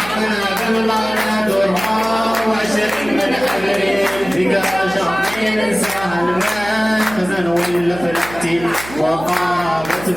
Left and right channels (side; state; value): right; noise; hum, 15 dB below the sound